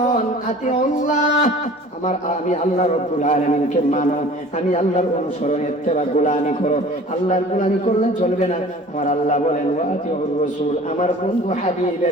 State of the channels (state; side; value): normal; both; correlation 0.45